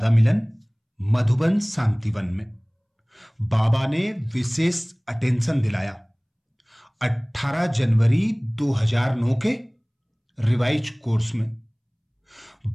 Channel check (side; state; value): both; identical; correlation 1.00